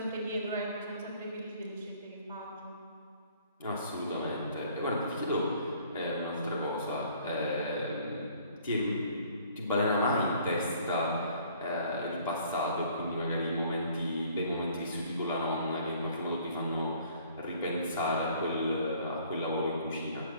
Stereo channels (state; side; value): inverted; both; correlation -0.57